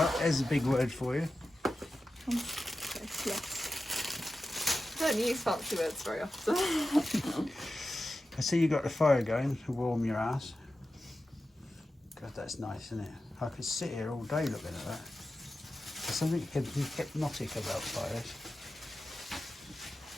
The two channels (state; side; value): normal; both; correlation 0.93